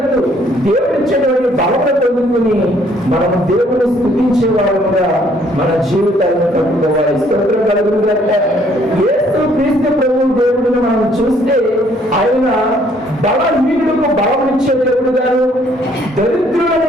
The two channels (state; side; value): normal; both; correlation 0.64